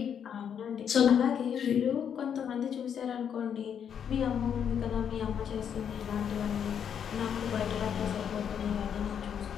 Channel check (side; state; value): right; quieter; 8.2 dB